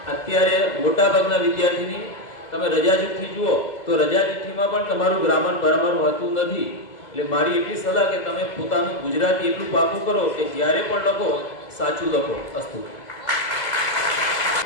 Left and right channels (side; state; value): right; late; 2.0 ms